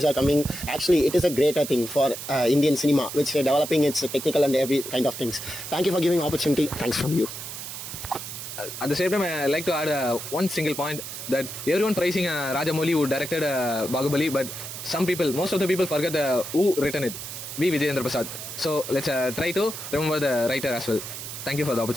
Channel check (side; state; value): right; noise; hiss, 9 dB below the sound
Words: are coming. Actually, it is a greater thing for Indian cinema, which developing its technical and every kind of things. Thank you for giving opportunity. Thanks from you. at the same time, I like to add one single point that everyone praising Rajamouli who directed Bahubali, but most of the people forget who written it. V. Vijayendra Prasad. So let's try to remember the writer as well. Thank you for the